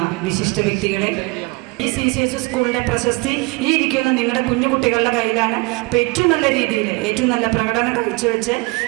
വിശിഷ്ട വ്യക്തികളെ, ഈ CCS സ്കൂളിൻ്റെ പ്രശസ്തി ഈ ഇരിക്കുന്ന നിങ്ങളുടെ കുഞ്ഞു കുട്ടികളുടെ കയ്യിലാണ്. അപ്പോൾ ഏറ്റവും നല്ല രീതിയിൽ ഏറ്റവും നല്ല പ്രകടനം കാഴ്ചവെച്ച്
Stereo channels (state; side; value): quieter; left; 27.1 dB